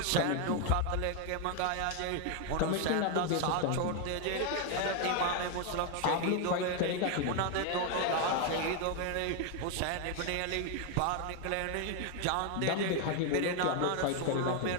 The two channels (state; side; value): different; both; correlation 0.01